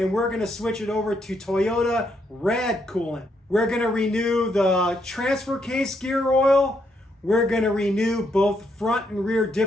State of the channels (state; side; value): normal; both; correlation 0.76